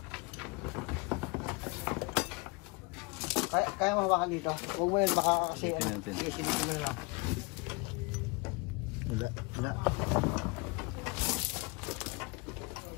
Kaya mahawakan dito. Huwag mo yun, baka kasi... Silipin natin. Sige, silipin mo na lang. Wala.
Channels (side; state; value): right; quieter; 28.3 dB